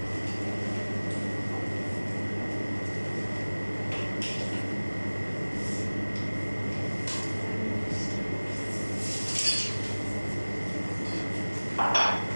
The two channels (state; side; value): inverted; both; correlation -1.00